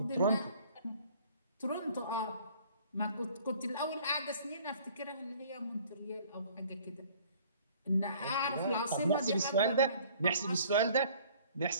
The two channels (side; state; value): both; inverted; correlation -0.53